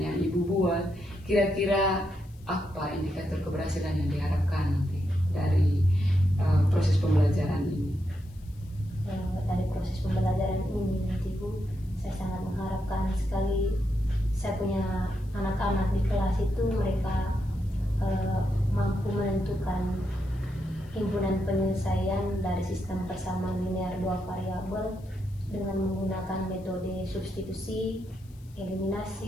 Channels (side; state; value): left; noise; hiss, 29 dB below the sound